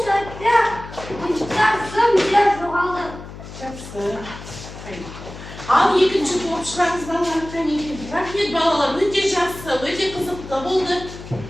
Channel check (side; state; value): left; noise; hum, 13 dB below the sound